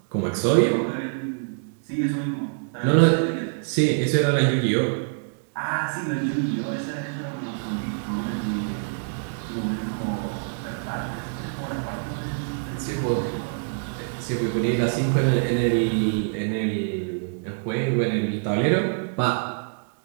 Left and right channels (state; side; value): silent; left; digital silence